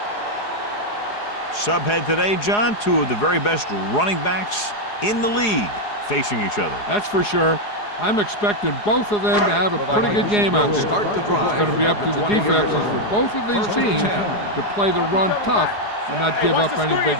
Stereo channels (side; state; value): right; late; 4.8 ms